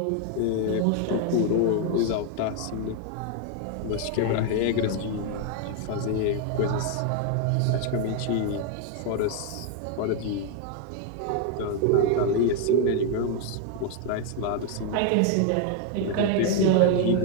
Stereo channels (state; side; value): different; both; correlation 0.01